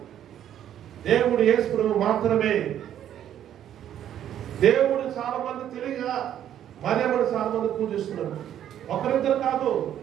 దేవుడు యేసుప్రభు మాత్రమే. దేవుడు చాలా మంది తెలియగా మరియమ్మని చాలా మంది పూజిస్తున్నారు. ఒకరిద్దరు కాదు,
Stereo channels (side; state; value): left; quieter; 10.7 dB